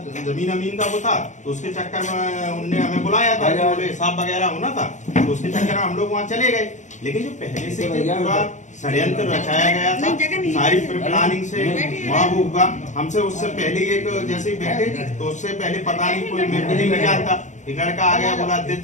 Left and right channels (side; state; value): right; late; 0.35 ms